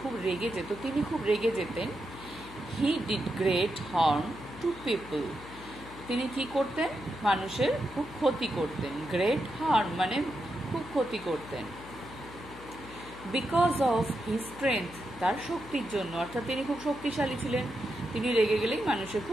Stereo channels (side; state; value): left; noise; hum, 16 dB below the sound